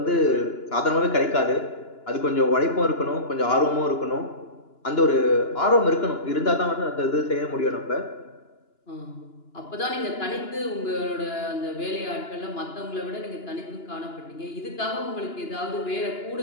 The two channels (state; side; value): late; right; 2.9 ms